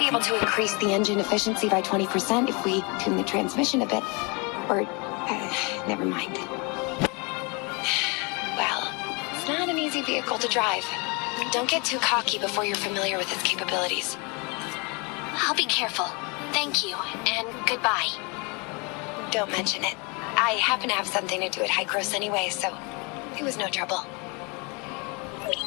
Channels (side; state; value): right; quieter; 30.8 dB